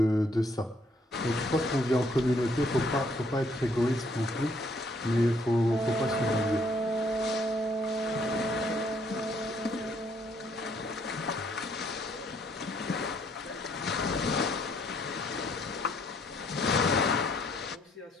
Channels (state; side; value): normal; both; correlation 0.67